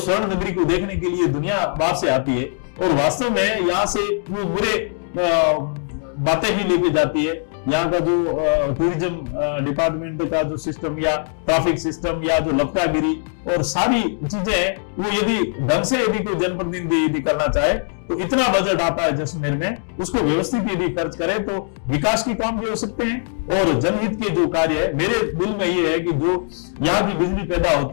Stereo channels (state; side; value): silent; right; digital silence